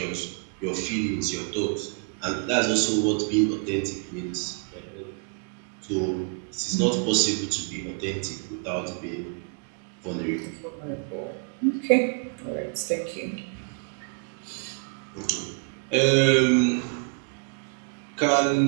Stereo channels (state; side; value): quieter; left; 39.0 dB